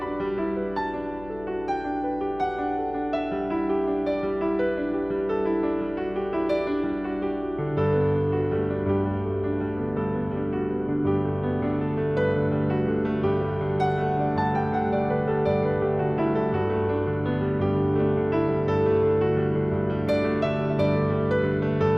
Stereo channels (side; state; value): left; noise; hum, 18 dB below the sound